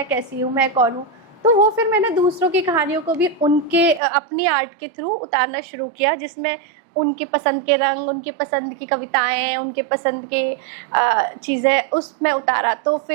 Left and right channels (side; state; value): left; drops out; at 4.0 s